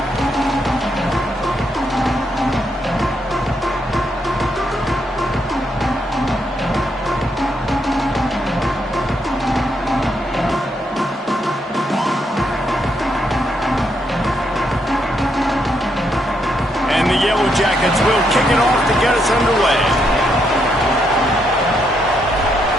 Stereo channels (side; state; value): both; normal; correlation 0.77